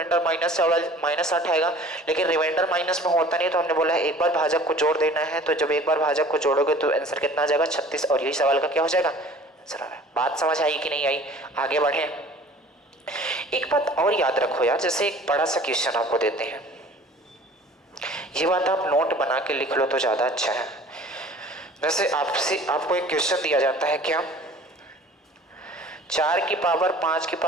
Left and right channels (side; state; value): both; normal; correlation 0.47